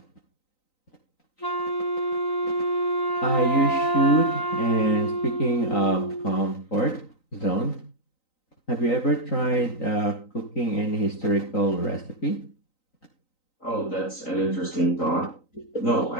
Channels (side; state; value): right; late; 3.9 ms